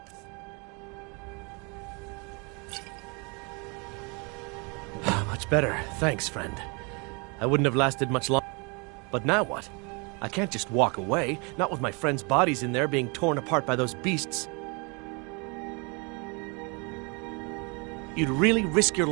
Much better. Thanks, friend. I wouldn't have lasted much longer. But now what? I can't just walk away, not with my friends' bodies in there being torn apart by those beasts. You'd really risk your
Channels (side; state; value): left; quieter; 31.8 dB